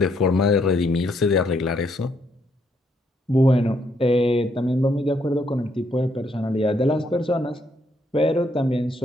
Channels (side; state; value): both; normal; correlation 0.73